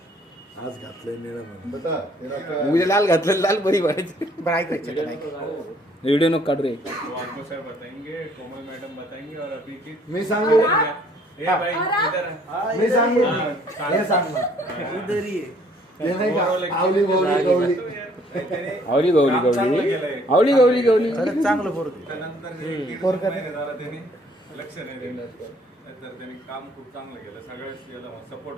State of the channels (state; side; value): normal; both; correlation 0.61